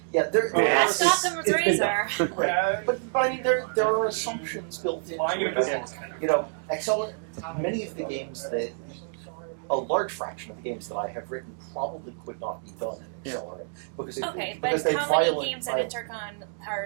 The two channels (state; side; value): silent; left; digital silence